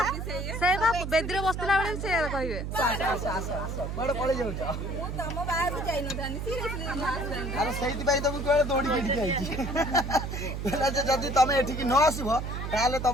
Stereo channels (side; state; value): right; noise; hum, 5 dB below the sound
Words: से बा बेदीर बसला बेले से कहबे बड़ पळे जाउछ मु तम बाहर को जाई न थानी सीरियसली अरे सहित भाई तुम केवल दौड़ी के ठीक आइछि पहला जे जदी तमे एठी की न आसीबो ताले